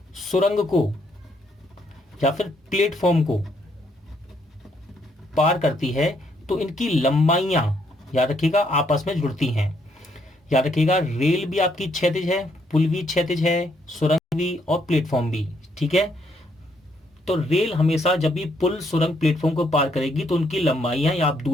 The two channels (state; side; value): normal; both; correlation 0.72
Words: सुरंग को या फिर प्लेटफॉर्म को पार करती है तो इनकी लंबाइयां, याद रखिएगा, आपस में जुड़ती हैं। याद रखिएगा, रेल भी आपकी क्षैतिज है, पुल भी क्षैतिज है, सुरंग भी और प्लेटफॉर्म भी। ठीक है, तो रेल हमेशा जब भी पुल सुरंग प्लेटफॉर्म को पार करेगी तो उनकी लंबाइयां या आप